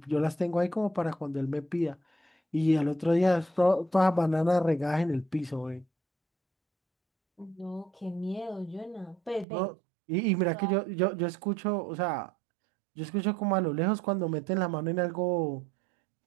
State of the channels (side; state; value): left; drops out; at 9.5 s